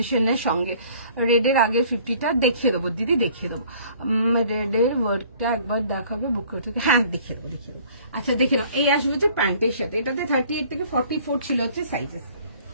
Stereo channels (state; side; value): inverted; both; correlation -0.54